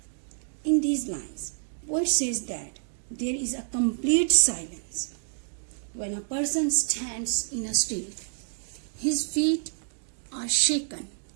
In these lines, poet says that there is a complete silence. When a person stands in a street, his feet are shaken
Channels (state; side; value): silent; left; digital silence